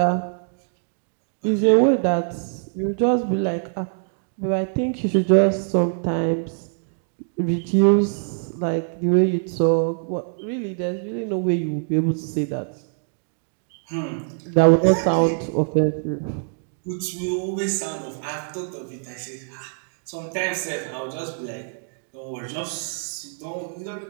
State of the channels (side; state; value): left; silent; digital silence